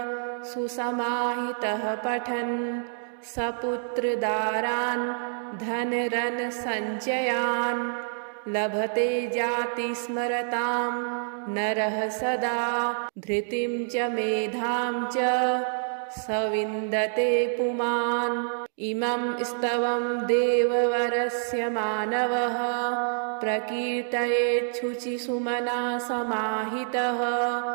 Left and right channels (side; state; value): left; silent; digital silence